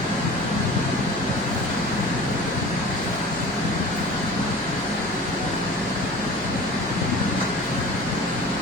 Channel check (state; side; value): noise; left; hum, 18 dB below the sound